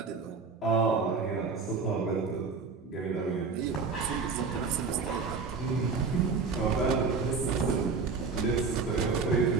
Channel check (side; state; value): left; quieter; 4.8 dB